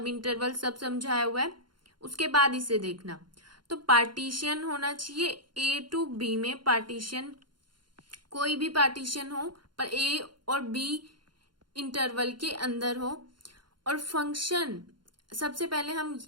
इंटरवल सब समझाया हुआ है, उसके बाद इसे देखना। तो पार्टीशन होना चाहिए ए टू बी में, पार्टीशन कोई भी पार्टीशन हो पर ए और बी इंटरवल के अंदर हो। और फंक्शन, सबसे पहले हम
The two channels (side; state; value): left; late; 0.71 ms